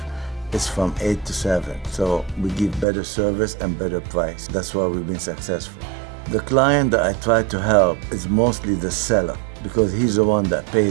it's from 8 to 7. So we give better service and better price. That's why we've been successful. The client that I try to help is mostly the seller, because he's the one that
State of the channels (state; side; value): drops out; left; at 2.9 s